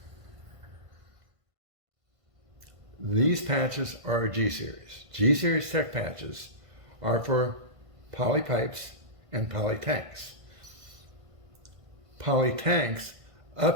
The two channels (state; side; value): late; left; 1.5 ms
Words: These patches are G-Series. G-Series Tech patches are for poly pipes and poly tanks. Poly tanks